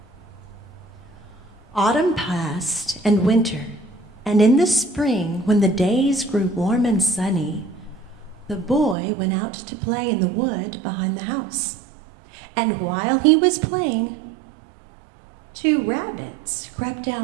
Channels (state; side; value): drops out; left; at 9.0 s